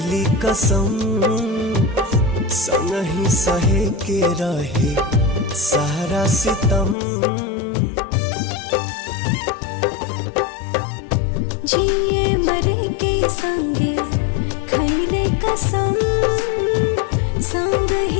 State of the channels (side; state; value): right; drops out; at 7.0 s